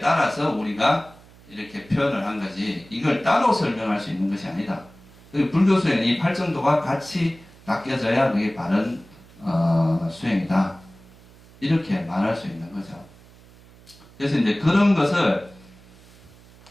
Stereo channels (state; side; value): noise; right; hum, 24 dB below the sound